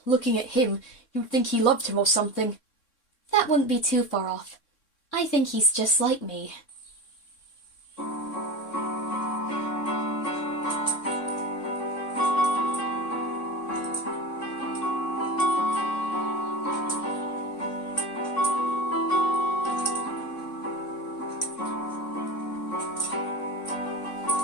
Looking at him, you'd think he loved him or something. That wouldn't be too far off. I think he's just like me.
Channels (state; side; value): late; right; 3.6 ms